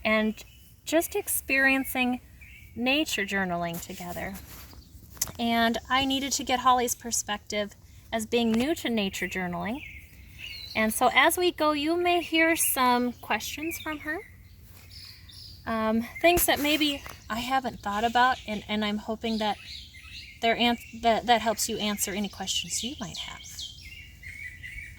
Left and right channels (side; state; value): both; identical; correlation 1.00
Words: and just experiencing nature journaling together. And I needed to get Holly's perspective as being new to nature journaling. And so as we go, you may hear some questions from her. Things that maybe I haven't thought about, and I'm hoping that that helps you answer any questions you might have.